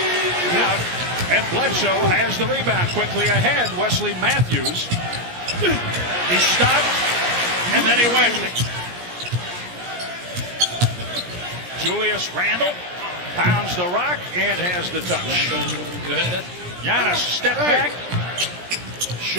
Out, and Bledsoe has the rebound quickly ahead. Wesley Matthews. He stopped, and then he went. Julius Randle pounds the rock and has the touch. Giannis step back.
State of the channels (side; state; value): left; late; 17 ms